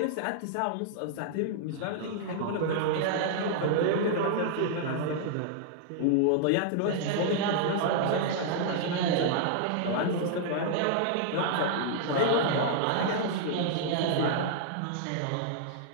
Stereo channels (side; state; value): both; different; correlation -0.01